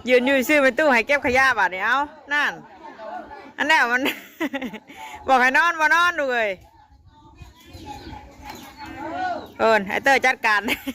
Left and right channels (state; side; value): identical; both; correlation 1.00